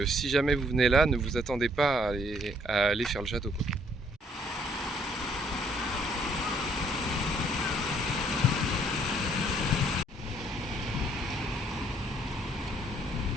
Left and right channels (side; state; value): both; normal; correlation 0.65